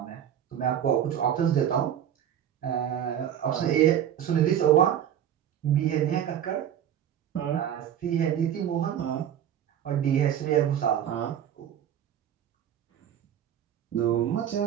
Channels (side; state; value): left; quieter; 10.0 dB